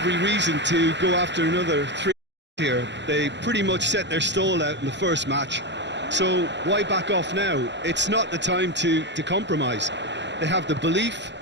reason to go after another 3 here. They pretty much set their stall out in the first match. So why back off now? It's not the time to compromise. They have the belief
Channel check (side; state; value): left; late; 0.52 ms